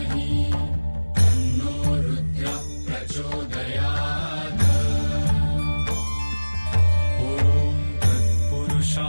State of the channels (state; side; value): inverted; both; correlation -1.00